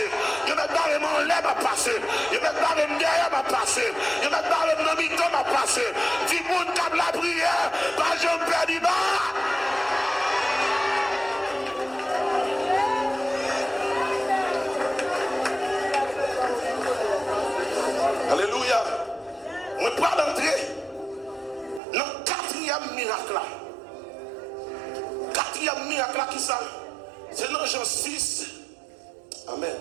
Dieu m'a barré mon lait m'a passé. Dieu m'a barré derrière m'a passé. Dieu m'a barré mon mito m'a passé. Dis moun comme la prière, pas je me perds pas. Jean 6, amen.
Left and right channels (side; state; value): left; drops out; at 21.8 s